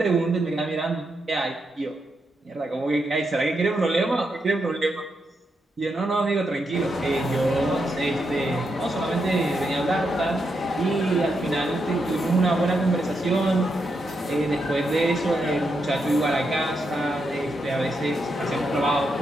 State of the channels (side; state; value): both; normal; correlation 0.83